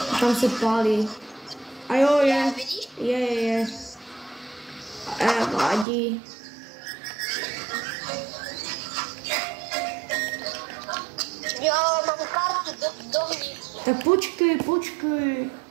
Tam se pálí. A jo, je. Vidíš? Je. Vadí. Jo, mám kartu dovnitř. Tak počkej.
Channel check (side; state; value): left; drops out; at 5.9 s